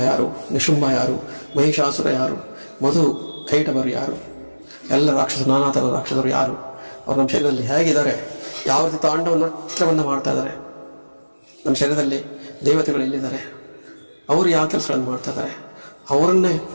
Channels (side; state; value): both; inverted; correlation -1.00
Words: ಯಾರು, ನಿಶುಂಭ ಯಾರು, ಮಹಿಷಾಸುರ ಯಾರು, ಮಧು ಕೈಟವರು ಯಾರು, ಎಲ್ಲ ರಾಕ್ಷಸರು, ನಾನಾ ಥರದ ರಾಕ್ಷಸರು ಯಾರು, ಅವರು ನಮ್ಮ ಶರೀರದಲ್ಲಿ ಹೇಗಿದ್ದಾರೆ, ಯಾವ ರೀತಿ ತಾಂಡವನ್ನು ನೃತ್ಯವನ್ನು ಮಾಡ್ತಾ ಇದ್ದಾರೆ, ನಮ್ಮ ಶರೀರದಲ್ಲಿ ದೇವತೆಗಳು ಎಲ್ಲಿದ್ದಾರೆ, ಅವರು ಯಾವ ಕೆಲಸಗಳನ್ನು ಮಾಡ್ತಾ ಇದ್ದಾರೆ, ಅವರನ್ನೇ